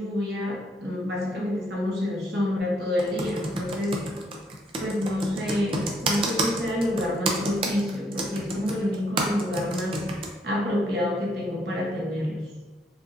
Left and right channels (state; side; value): normal; both; correlation 0.70